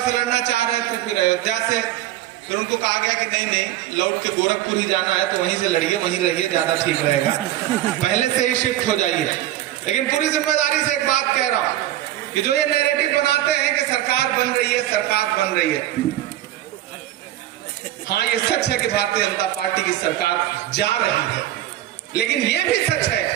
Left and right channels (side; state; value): left; quieter; 13.7 dB